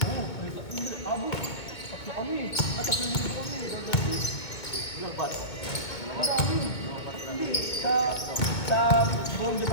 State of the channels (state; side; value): late; right; 2.0 ms